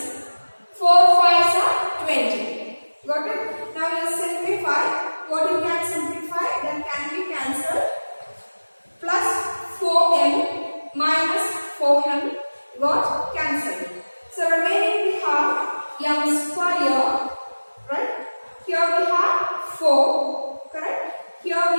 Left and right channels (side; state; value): both; inverted; correlation -1.00